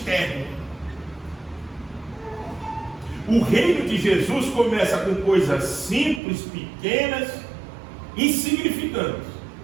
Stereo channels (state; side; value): drops out; left; at 6.2 s